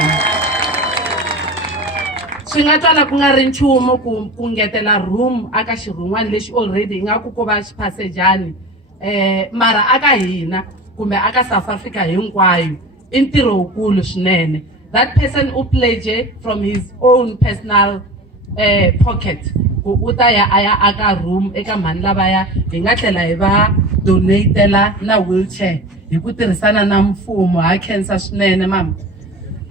Swi nga twala ku nga ri nchumu ku ngetela room aka xirhun'wana lexi already nga ku ko va xiphasejani, mara aka hina kumbe aka South Africa hinkwayo i ntirho wukulu swinene. That person u pledge from his own personal pocket ku u ta ya aya aka room eka mhani lavaya hi nga tlhela hi va donatela na wheelchair hi ku tirhisana na mfumo. Ha khensa swinene mama.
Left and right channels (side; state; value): both; normal; correlation 0.34